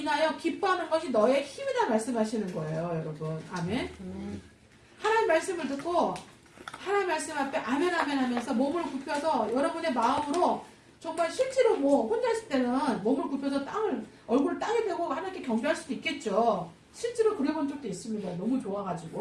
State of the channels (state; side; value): identical; both; correlation 1.00